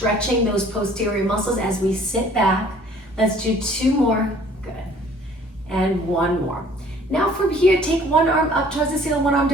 those posterior muscles as we sit back. Let's do 2 more. Good. And 1 more. Now from here, take one arm up towards the ceiling, one arm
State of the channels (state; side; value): normal; both; correlation 0.55